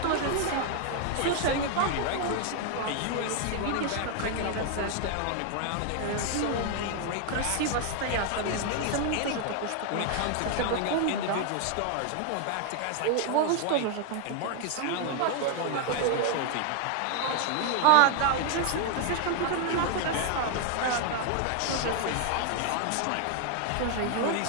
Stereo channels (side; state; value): both; different; correlation 0.00